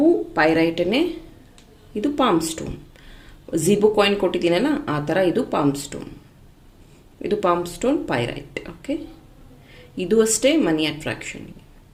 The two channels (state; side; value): identical; both; correlation 1.00